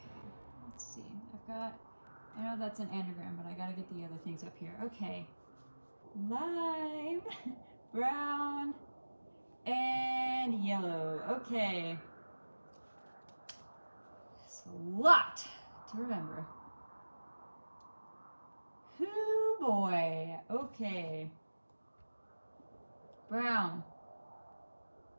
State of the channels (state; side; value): inverted; both; correlation -1.00